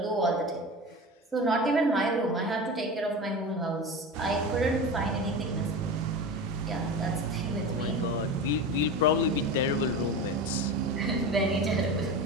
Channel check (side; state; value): both; normal; correlation 0.28